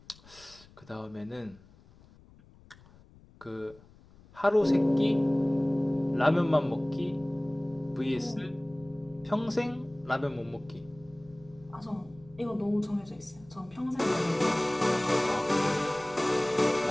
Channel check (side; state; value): left; noise; rumble, 25 dB below the sound